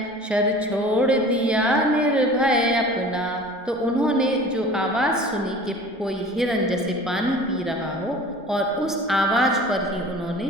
शर छोड़ दिया निर्भय अपना। तो उन्होंने जो आवाज़ सुनी कि कोई हिरन जैसे पानी पी रहा हो और उस आवाज़ पर ही उन्होंने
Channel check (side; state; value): both; normal; correlation 0.42